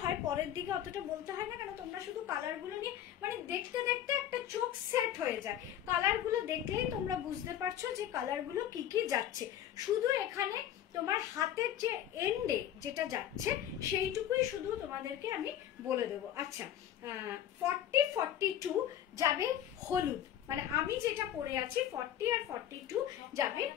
হয় পরের দিকে অতটা বলতে হয় না, কেন তোমরা শুধু কালারগুলো নিয়ে মানে দেখতে দেখতে একটা চোখ সেট হয়ে যায়, কালারগুলো দেখলেই তোমরা বুঝতে পারছো যে কালারগুলো কি কি যাচ্ছে। শুধু এখানে তোমার হাতের যে এন্ডে যেটা যাচ্ছে সেইটুকুই শুধু তোমাদেরকে আমি বলে দেবো। আচ্ছা 40-42 যাবে হলুদ, মানে আমি যেটা পরে আছি 40 আর 42 যাবে।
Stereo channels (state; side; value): quieter; right; 10.9 dB